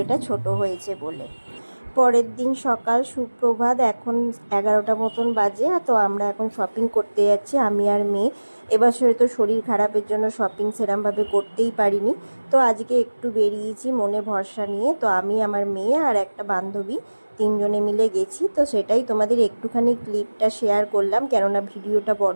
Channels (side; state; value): both; inverted; correlation -1.00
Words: ছোট হয়েছে বলে। পরের দিন সকাল, সুপ্রভাত। এখন 11টা মতন বাজে। তো আমরা এখন শপিং করতে যাচ্ছি, আমি আর মেয়ে। এবছরে তো শরীর খারাপের জন্য শপিং সেরমভাবে করতেই পারিনি। তো আজকে একটু বেরিয়েছি মনে ভরসা নিয়ে। তো আমি, আমার মেয়ে আর একটা বান্ধবী, তিনজনে মিলে গেছি। তো সেটাই তোমাদের একটুখানি ক্লিপটা শেয়ার করলাম, কেননা ভিডিওটা